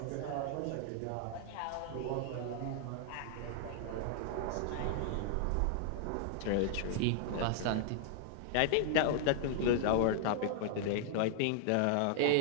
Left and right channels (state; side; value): different; both; correlation -0.01